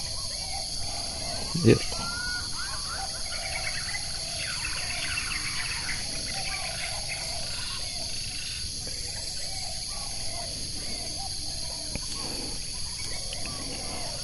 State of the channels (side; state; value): both; identical; correlation 1.00